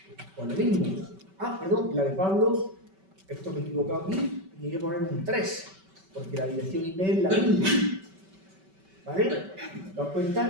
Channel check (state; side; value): late; left; 5.2 ms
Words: pues lo mismo. Perdón, la de Pablo, esto me he equivocado aquí, y hay que poner un 3, porque la dirección IP es la misma. ¿Vale? ¿Te das